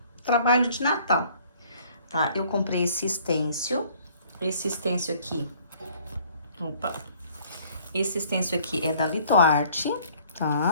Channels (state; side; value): inverted; both; correlation -0.57